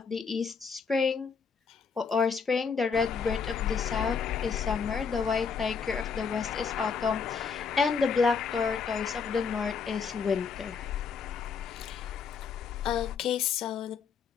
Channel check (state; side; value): quieter; right; 5.8 dB